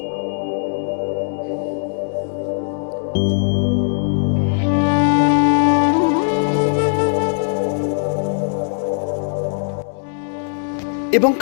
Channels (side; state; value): right; silent; 66 dB below the other